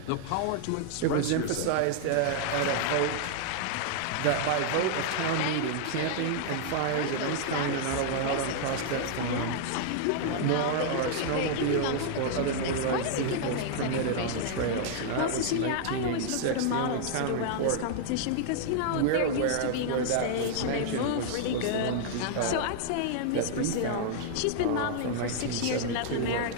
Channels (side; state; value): both; different; correlation -0.01